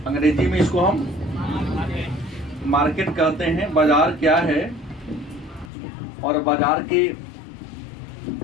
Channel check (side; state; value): right; drops out; at 5.7 s